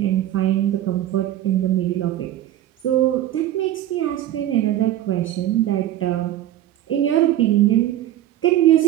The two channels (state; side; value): quieter; left; 13.0 dB